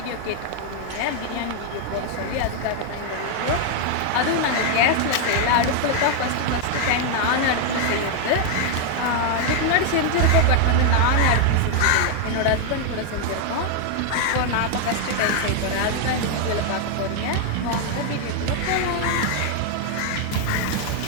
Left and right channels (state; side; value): different; both; correlation 0.00